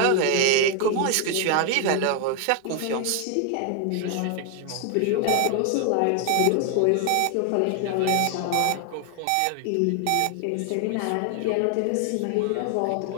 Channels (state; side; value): different; both; correlation 0.00